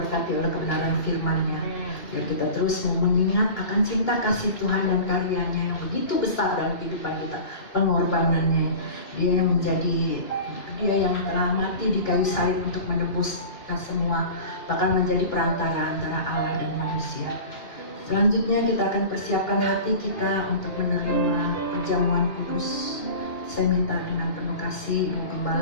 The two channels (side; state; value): right; late; 2.8 ms